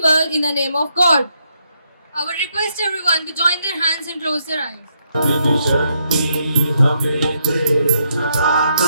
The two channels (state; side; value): inverted; both; correlation -0.77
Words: world in the name of God. I would request everyone to join their hands and close their eyes.